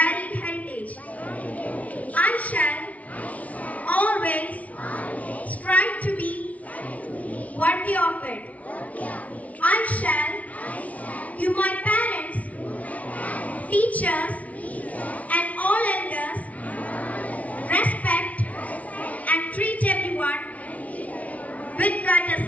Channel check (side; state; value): right; late; 0.068 ms